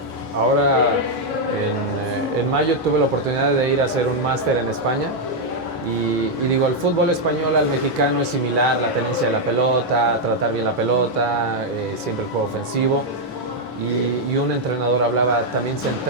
Ahora en mayo tuve la oportunidad de ir a hacer un máster en España Y digo, el fútbol español al mexicano es similar, la tenencia de la pelota, tratar bien la pelota, siempre el juego ofensivo. Y un entrenador hablaba, también se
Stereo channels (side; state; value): both; normal; correlation -0.01